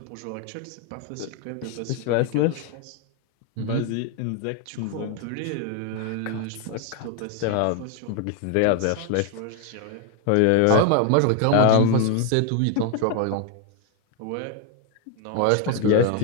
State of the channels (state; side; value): different; both; correlation 0.01